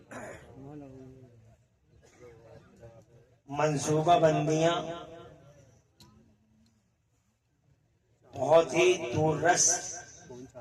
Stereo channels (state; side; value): identical; both; correlation 1.00